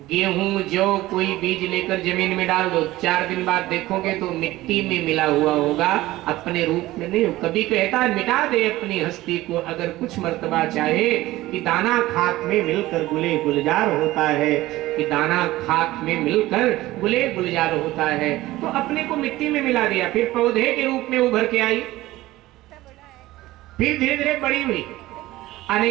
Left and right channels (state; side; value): quieter; left; 17.2 dB